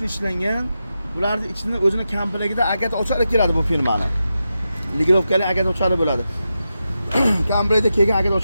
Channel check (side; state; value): both; inverted; correlation -0.89